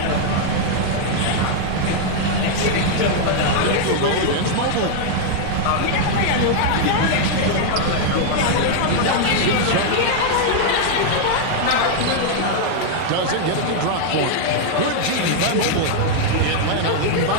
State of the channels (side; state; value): both; different; correlation -0.01